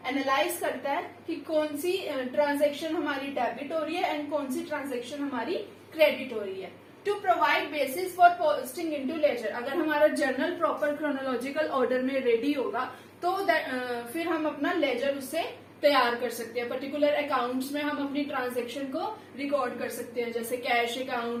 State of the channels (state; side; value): identical; both; correlation 1.00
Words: एनालाइज करता है कि कौन सी ट्रांजेक्शन हमारी डेबिट हो रही है एंड कौन सी ट्रांजेक्शन हमारी क्रेडिट हो रही है. To provide basis for posting into ledger. अगर हमारा जर्नल प्रॉपर क्रोनोलॉजिकल ऑर्डर में रेडी होगा तो फिर हम अपना लेजर उससे तैयार कर सकते हैं. पर्टिकुलर अकाउंट्स में हम अपनी ट्रांजेक्शन को रिकॉर्ड कर सकते हैं, जैसे कैश